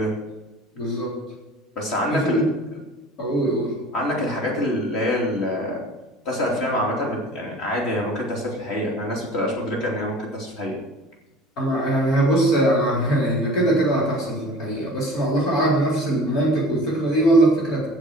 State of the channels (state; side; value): normal; both; correlation 0.44